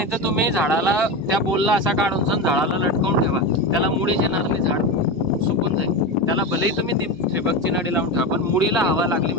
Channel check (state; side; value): normal; both; correlation 0.20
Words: तर तुम्ही झाडाला त्या पोलला असा काढून झाडाला लटकवून ठेवा, त्याला मुळीच येणार नाही, झाड सुकून जाईल. त्याला भलेही तुम्ही ठिबकची नळी लावून ठेवा, पण मुळीला हवा लागली